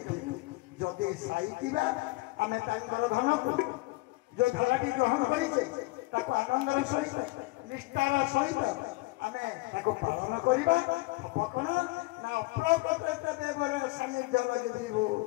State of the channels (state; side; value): quieter; right; 22.7 dB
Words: जदि साईतीबा आमे तांकर धन को जो धाराटी ग्रहण करिछे ताको आनंदर सहित निष्ठार सहित आमे ताको पालन करिबा अपकण ना अप्रकट देवर सानिध्य लगिबो